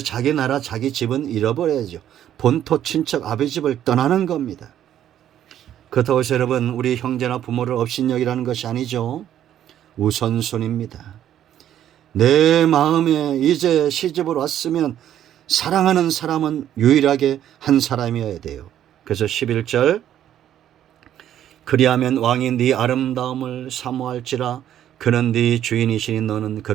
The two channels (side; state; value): left; quieter; 11.0 dB